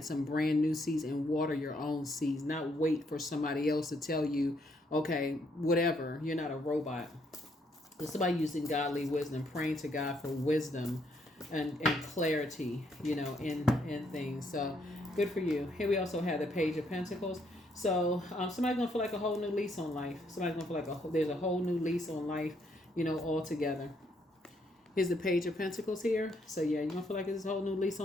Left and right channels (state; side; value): normal; both; correlation 0.72